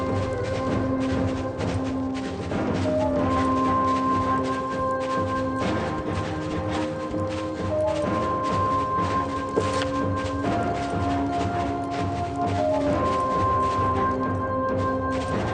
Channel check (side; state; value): both; identical; correlation 1.00